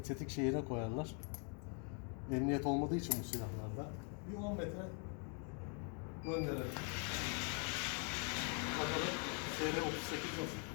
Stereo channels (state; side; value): quieter; right; 39.3 dB